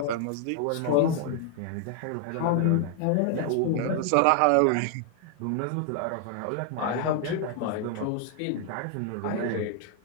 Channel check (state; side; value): different; both; correlation 0.00